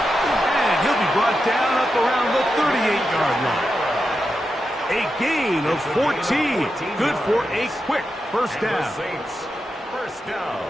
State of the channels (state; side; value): normal; both; correlation 0.88